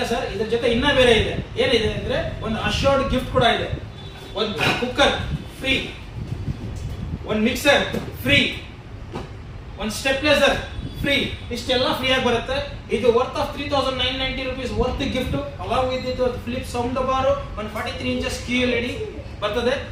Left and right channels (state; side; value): identical; both; correlation 1.00